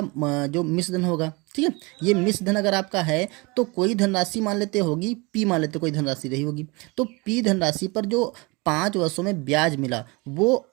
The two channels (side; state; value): left; quieter; 26.7 dB